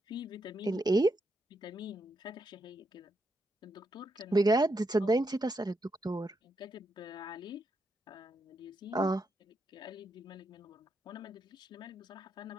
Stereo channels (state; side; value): normal; both; correlation 0.82